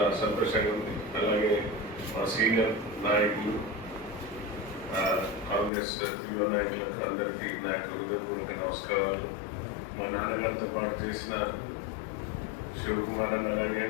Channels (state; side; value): drops out; right; at 5.7 s